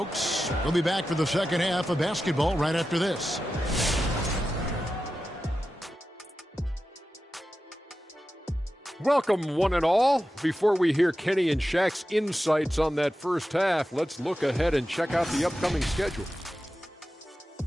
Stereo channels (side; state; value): both; normal; correlation 0.92